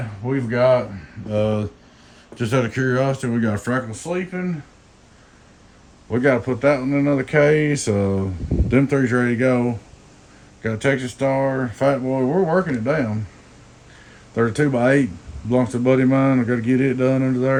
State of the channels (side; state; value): both; identical; correlation 1.00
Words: We've got just out of curiosity, we got a freckle sleeping. We got to put that one in another case. Them 3's ready to go. Got a Texas Star, Fat Boy. We're working it down. 32x8 belongs to a buddy of mine. I got to get it done under